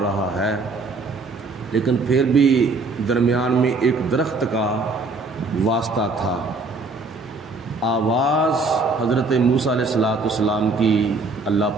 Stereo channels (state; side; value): quieter; left; 3.7 dB